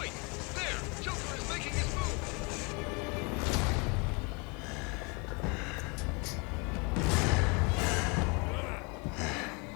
there! Joker is making his move!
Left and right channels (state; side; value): quieter; right; 30.6 dB